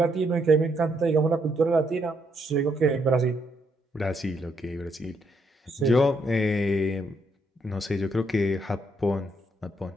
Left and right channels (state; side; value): normal; both; correlation 0.75